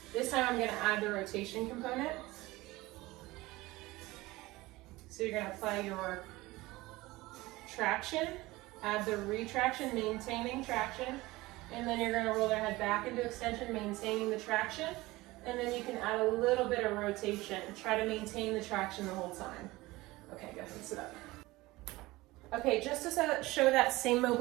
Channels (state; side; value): quieter; left; 20.0 dB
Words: This time I'm going to add the rotation component. So you're going to apply your traction, add the retraction, maintaining traction, and then you're going to roll their head back into extension, maintaining the traction, and then you can add a little bit of rotation. Try to maintain the traction the whole time. Okay, go ahead and sit up. Okay, just to show that same